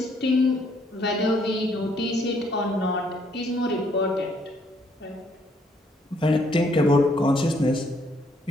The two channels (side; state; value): both; normal; correlation 0.68